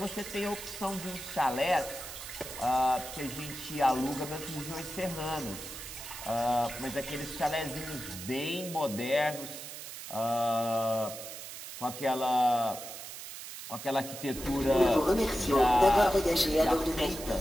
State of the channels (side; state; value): right; noise; hiss, 10 dB below the sound